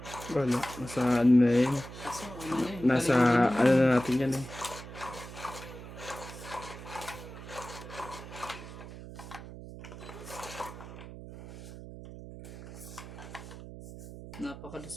Wala. Nasa ano na yun. Kaso ano na yun. Nasa ano na natin yan eh.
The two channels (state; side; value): noise; right; hum, 13 dB below the sound